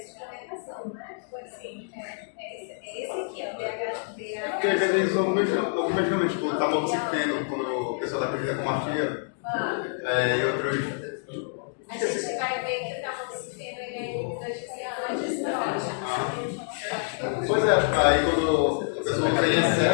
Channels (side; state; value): right; silent; digital silence